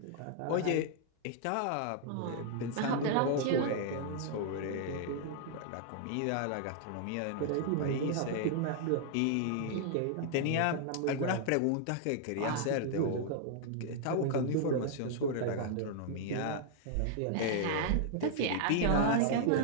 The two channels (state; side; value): different; both; correlation -0.01